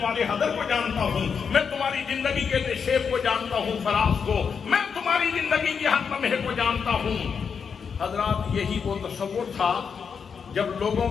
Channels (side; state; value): right; quieter; 6.3 dB